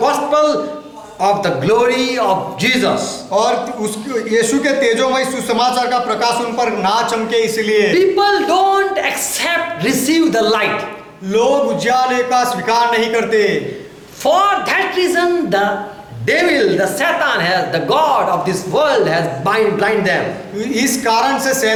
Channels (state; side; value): identical; both; correlation 1.00